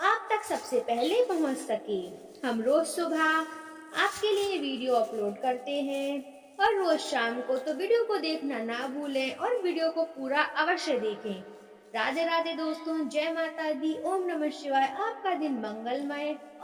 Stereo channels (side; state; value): both; identical; correlation 1.00